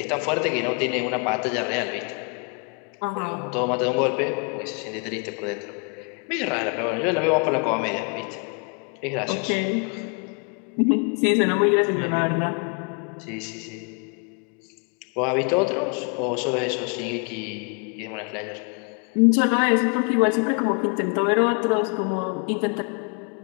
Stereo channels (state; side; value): quieter; right; 36.5 dB